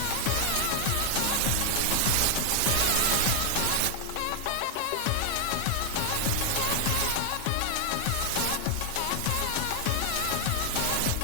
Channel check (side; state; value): both; different; correlation 0.00